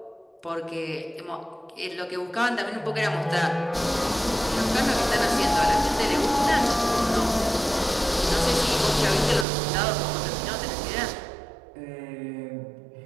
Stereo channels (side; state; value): left; drops out; at 9.5 s